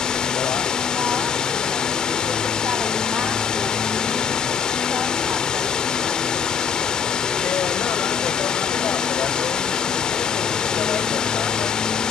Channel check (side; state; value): right; quieter; 6.9 dB